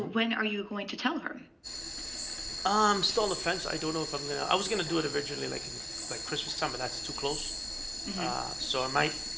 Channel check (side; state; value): both; identical; correlation 1.00